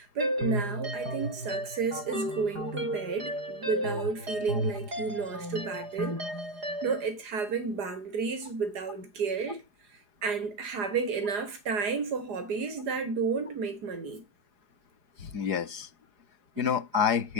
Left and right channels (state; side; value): late; left; 4.9 ms